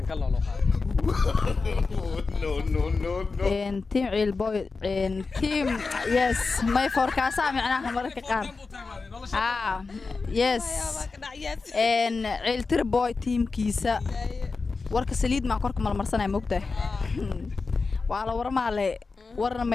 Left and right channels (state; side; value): quieter; right; 4.2 dB